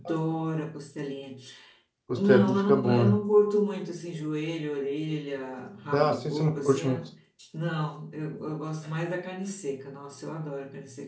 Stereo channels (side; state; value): both; identical; correlation 1.00